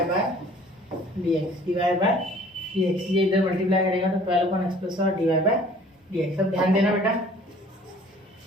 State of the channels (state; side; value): normal; both; correlation 0.52